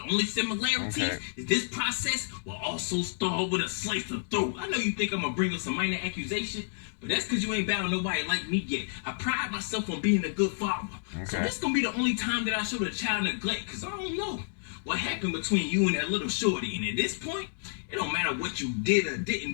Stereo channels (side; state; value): right; silent; digital silence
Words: only similarities is this process will also start with a slice of throat. I know you think I'm gonna bring up some minor accusation, but that's because you ain't battled nobody like me yet. I pride myself on being a good father. So this gonna be the only time that I show the child neglect, because I don't know what happened between you and that little shorty. And at this point, it don't matter what you did or didn't